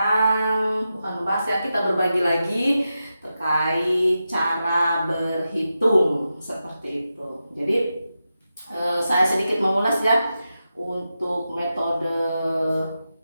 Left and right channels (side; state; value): both; inverted; correlation -0.90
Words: bukan membahas ya, kita berbagi lagi terkait cara berhitung seperti itu. Jadi saya sedikit mengulas ya untuk metode